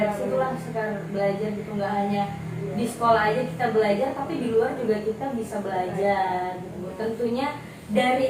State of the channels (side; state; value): both; identical; correlation 1.00